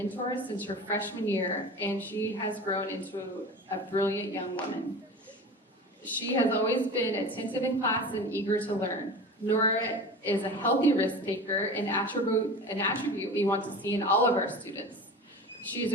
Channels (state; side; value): normal; both; correlation 0.34